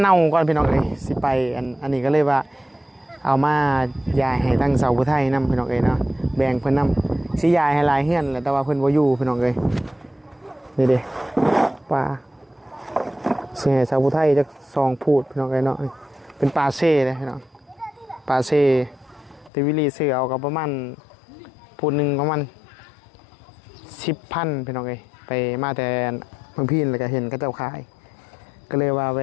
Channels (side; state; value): right; drops out; at 19.5 s